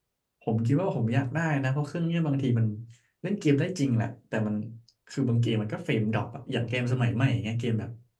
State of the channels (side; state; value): both; identical; correlation 1.00